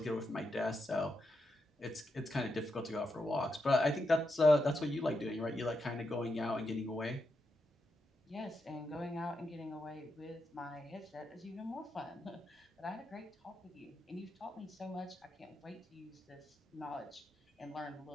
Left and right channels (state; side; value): normal; both; correlation 0.85